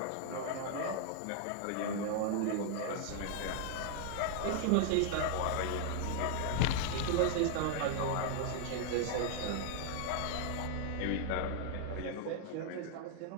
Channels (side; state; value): both; different; correlation 0.00